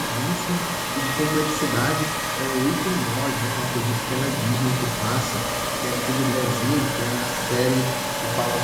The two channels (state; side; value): identical; both; correlation 1.00